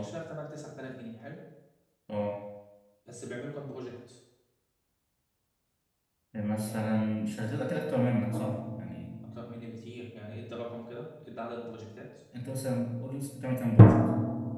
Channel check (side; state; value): both; identical; correlation 1.00